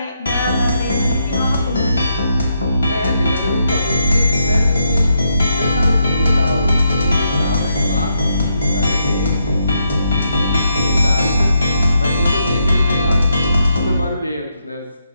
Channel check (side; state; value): both; inverted; correlation -0.79